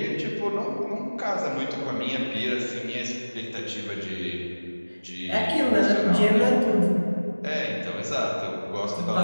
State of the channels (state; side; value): inverted; both; correlation -1.00